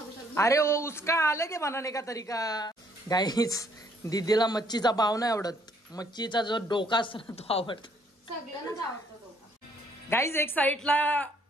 शकतो. अरे वो उसका अलग है बनाने का तरीका. गाईस दीदीला मच्छीचा भाव नाही आवडत. मच्छीचा जो डोका असतो ना तो आवडतो. सगळ्यांनाच आवडतो डोका. गाईज एक साइडला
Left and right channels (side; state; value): both; normal; correlation 0.66